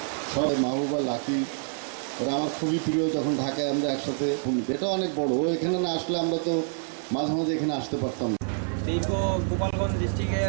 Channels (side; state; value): left; silent; digital silence